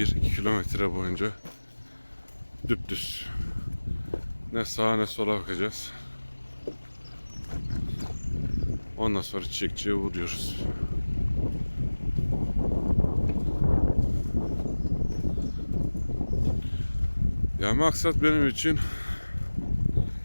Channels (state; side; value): inverted; both; correlation -1.00